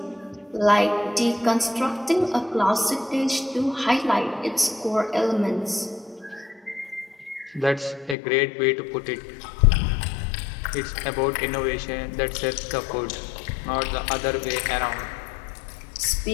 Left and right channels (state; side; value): drops out; right; at 8.2 s